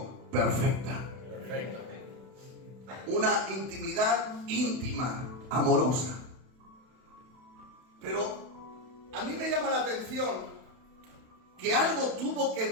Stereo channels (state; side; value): late; left; 31 ms